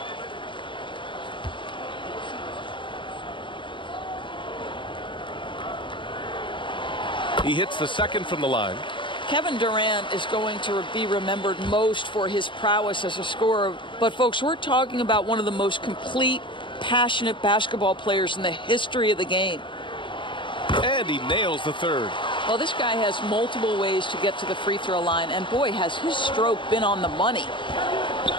He hits the second from the line. Kevin Durant is going to be remembered most for his prowess as a scorer. But, folks, we're talking about one of the most complete, passionate basketball players in the history of the game. And he nails the third. Well, this guy has multiple ways to get to the free throw line. And, boy, has his stroke been on the money.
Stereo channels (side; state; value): right; late; 0.24 ms